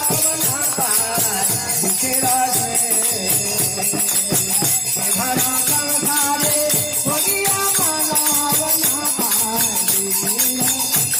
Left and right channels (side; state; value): both; identical; correlation 1.00